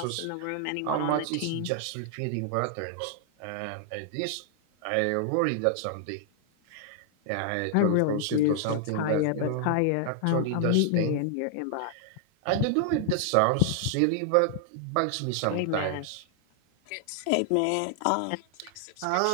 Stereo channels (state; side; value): different; both; correlation 0.00